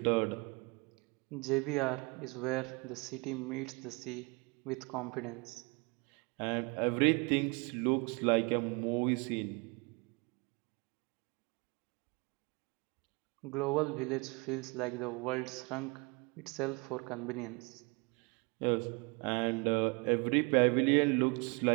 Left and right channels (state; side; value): quieter; left; 30.2 dB